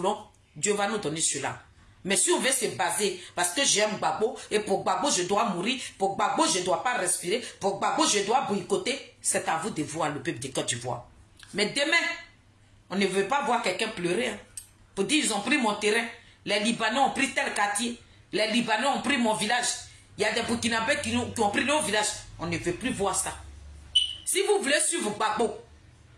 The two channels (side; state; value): both; identical; correlation 1.00